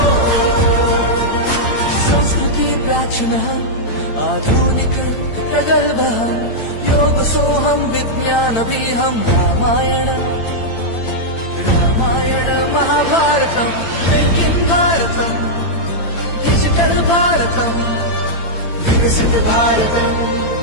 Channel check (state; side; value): late; right; 8.9 ms